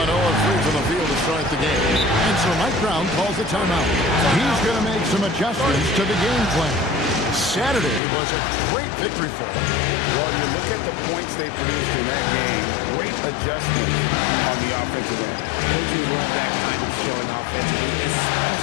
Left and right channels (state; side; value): drops out; right; at 8.0 s